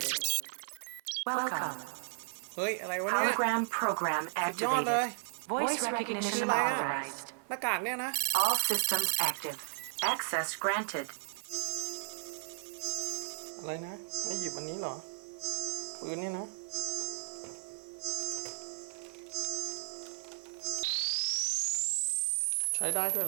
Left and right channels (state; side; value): silent; left; digital silence